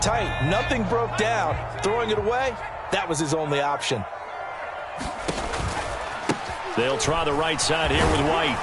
tight. Nothing broke down. Throwing it away, that was his only option. They'll try the right side here with White.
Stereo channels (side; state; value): both; identical; correlation 1.00